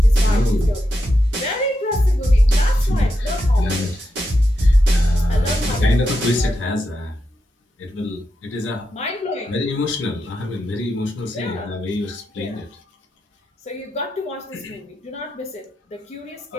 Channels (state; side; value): normal; both; correlation 0.86